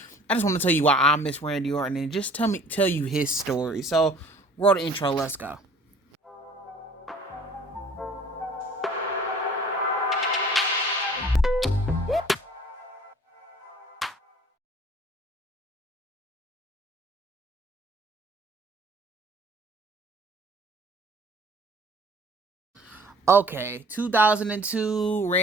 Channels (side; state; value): both; normal; correlation 0.51